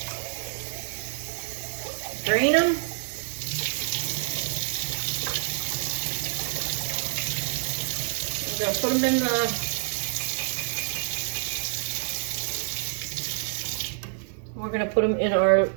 Drain them. We're going to put them in we're going to put them in our,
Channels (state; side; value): silent; left; 60 dB below the other